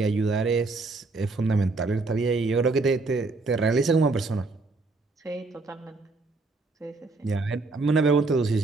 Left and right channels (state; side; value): quieter; left; 3.6 dB